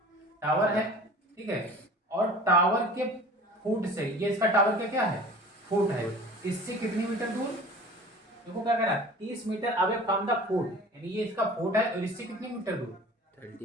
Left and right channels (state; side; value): normal; both; correlation 0.42